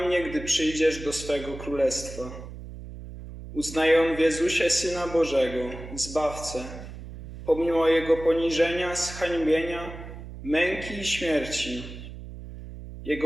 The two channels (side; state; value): right; noise; hum, 12 dB below the sound